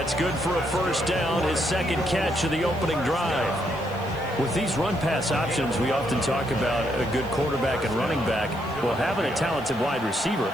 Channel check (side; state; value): right; noise; hiss, 25 dB below the sound